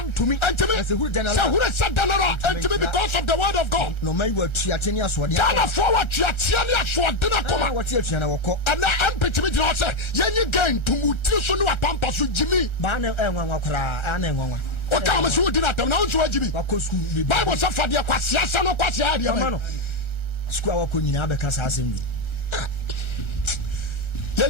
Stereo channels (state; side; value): late; right; 1.3 ms